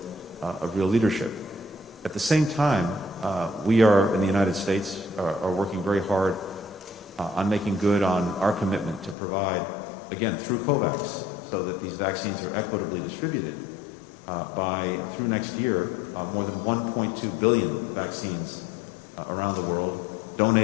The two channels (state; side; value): drops out; right; at 9.2 s